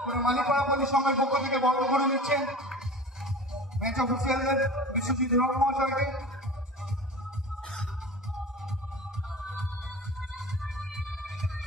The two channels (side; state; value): both; normal; correlation 0.36